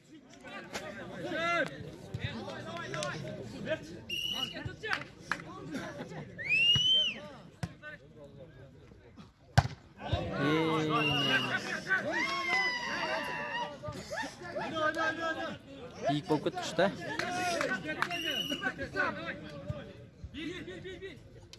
İlk bok işte.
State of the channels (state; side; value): identical; both; correlation 1.00